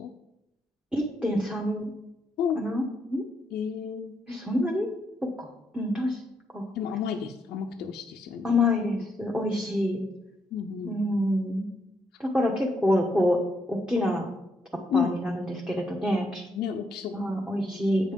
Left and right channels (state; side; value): normal; both; correlation 0.77